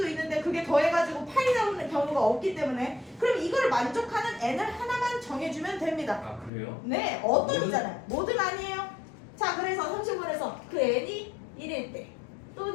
있는데 그게 더해가지고 8이 나오는 경우가 없기 때문에 그럼 이걸 만족하는 n을 하나만 정해주면 됩니다. 아 그래요? 네, 어떤이잖아요. 뭐든 아니에요. 자, 그래서 30번에서 그 n이 1일 때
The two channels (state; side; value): drops out; right; at 6.5 s